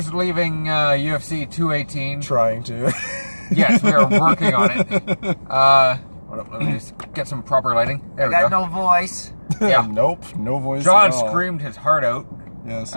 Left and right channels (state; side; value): inverted; both; correlation -1.00